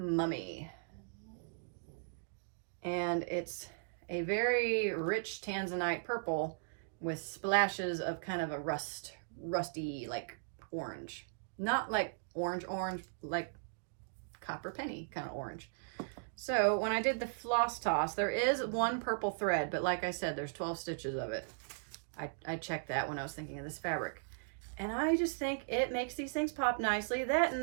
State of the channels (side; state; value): left; silent; digital silence